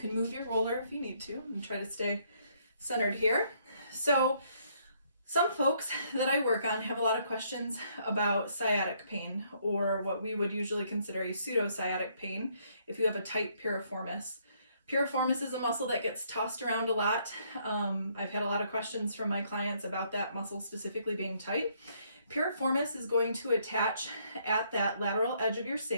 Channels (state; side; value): inverted; both; correlation -0.69